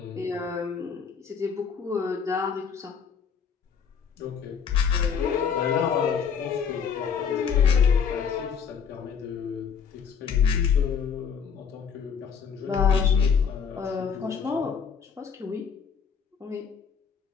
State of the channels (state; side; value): quieter; right; 6.7 dB